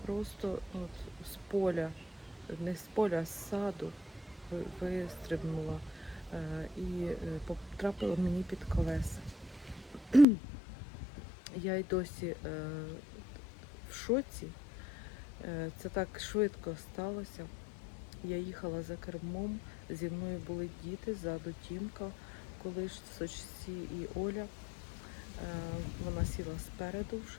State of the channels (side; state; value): right; drops out; at 10.2 s